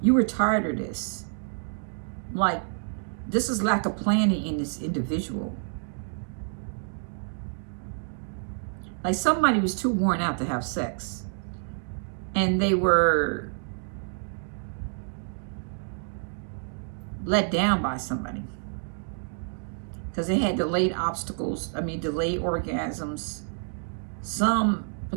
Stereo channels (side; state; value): left; silent; digital silence